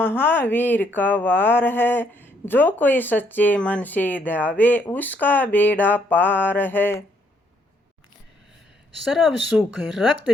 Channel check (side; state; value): both; normal; correlation 0.70